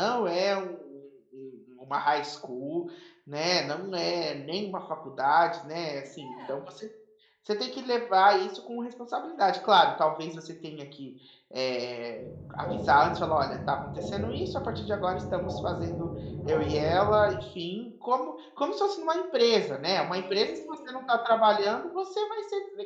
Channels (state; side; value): identical; both; correlation 1.00